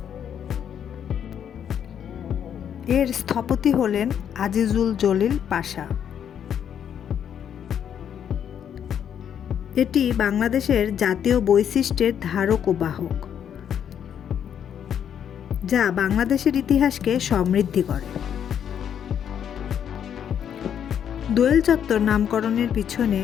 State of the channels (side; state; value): right; quieter; 8.8 dB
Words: এর স্থপতি হলেন আজিজুল জলিল পাশা। এটি বাংলাদেশের জাতীয় বৈশিষ্ট্যের ধারক ও বাহক, যা বাংলাদেশের ইতিহাসকে সমৃদ্ধ করে। দোয়েল চত্বর নামকরণের পিছনে